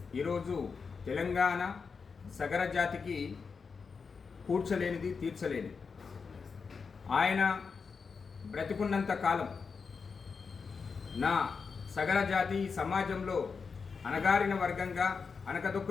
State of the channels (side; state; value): right; quieter; 5.3 dB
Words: ఈరోజు తెలంగాణ సగర జాతికి కూర్చలేనిది, తీర్చలేనిది. ఆయన బ్రతికున్నంత కాలం నా సగర జాతి సమాజంలో అణగారిన వర్గంగా